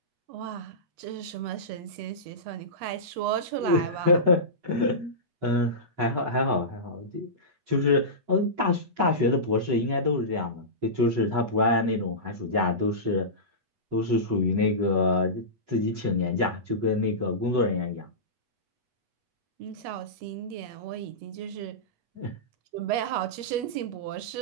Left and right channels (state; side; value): late; left; 8.2 ms